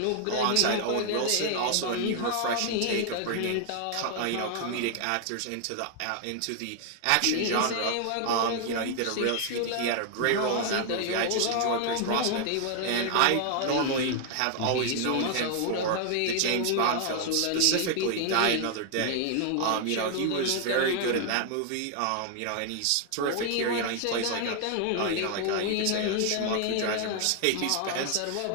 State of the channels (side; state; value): both; different; correlation 0.00